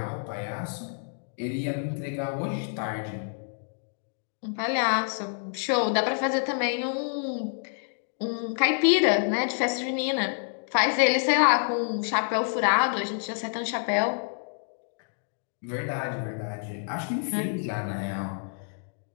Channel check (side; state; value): right; silent; digital silence